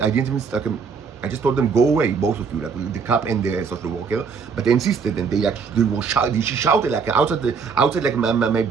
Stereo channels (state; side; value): quieter; left; 5.6 dB